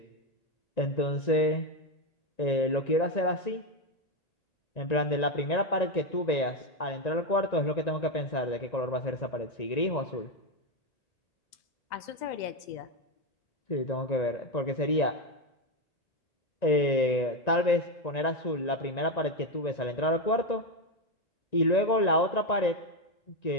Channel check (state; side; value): late; right; 1.9 ms